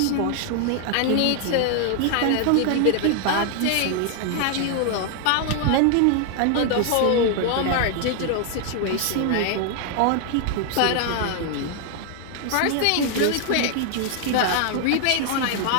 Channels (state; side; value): different; both; correlation 0.00